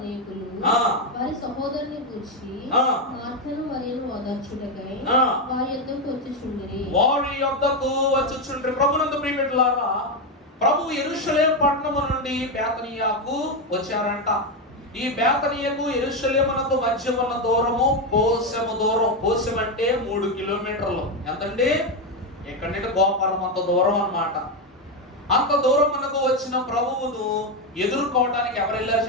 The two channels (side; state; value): both; normal; correlation 0.08